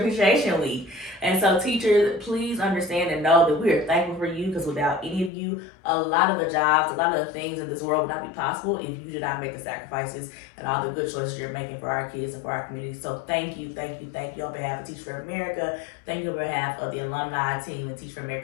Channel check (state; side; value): drops out; right; at 5.3 s